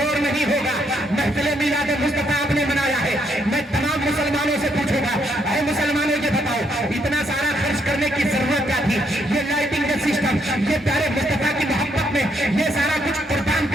نہیں ہوگا. محفل میلاد مصطفیٰ آپ نے منایا ہے, میں تمام مسلمانوں سے پوچھوں گا, اے مسلمانوں یہ بتاؤ اتنا سارا خرچ کرنے کی ضرورت کیا تھی؟ یہ لائٹنگ کا سسٹم, یہ پیارے مصطفیٰ کی محبت میں یہ سارا کچھ قربان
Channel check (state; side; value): normal; both; correlation 0.74